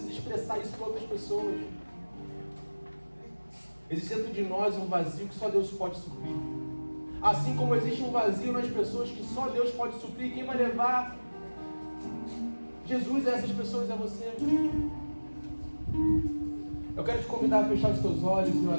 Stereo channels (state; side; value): inverted; both; correlation -1.00